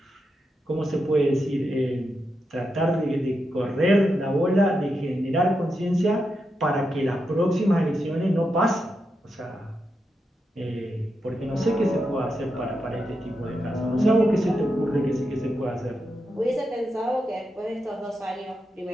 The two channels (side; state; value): both; normal; correlation 0.86